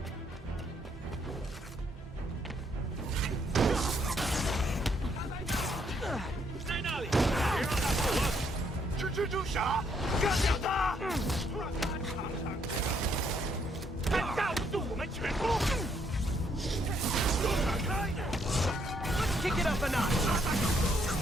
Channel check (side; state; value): both; normal; correlation 0.71